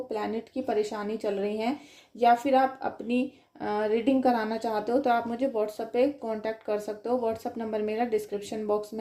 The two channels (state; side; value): identical; both; correlation 1.00